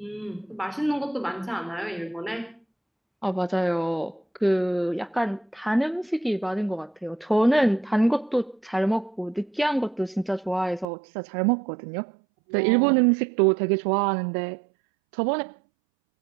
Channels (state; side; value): drops out; left; at 10.9 s